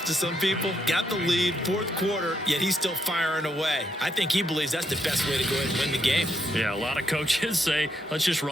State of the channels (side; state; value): both; normal; correlation 0.77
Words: to some people. Got the lead, 4th quarter, yet he's still firing away. I think he believes that's the best way to go ahead and win the game. Yeah, a lot of coaches say, let's just